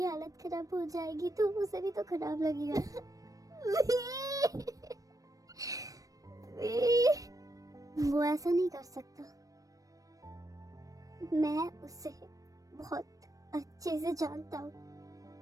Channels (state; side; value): late; left; 0.16 ms